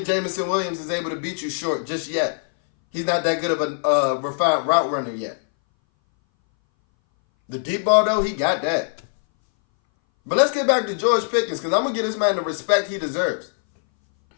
Jameson Williams is able to beat you short just yet. He's not that good of a refined route runner yet. The deep ball, though, he got that. But let's get back to George Pickens, because I'm going to give this man the respect he deserves.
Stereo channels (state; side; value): silent; right; 61 dB below the other